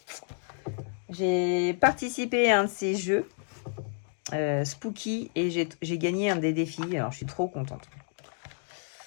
J'ai participé à un de ces jeux, Spooky, et j'ai gagné un des défis. Alors, je suis trop contente.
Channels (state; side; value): silent; right; 58 dB below the other